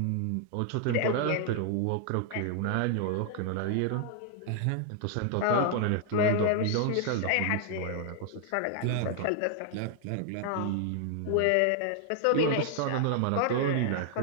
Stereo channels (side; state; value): both; different; correlation 0.00